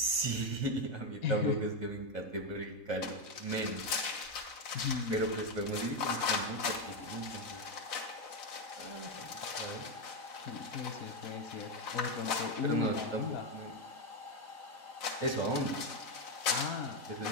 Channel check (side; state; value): right; late; 4.1 ms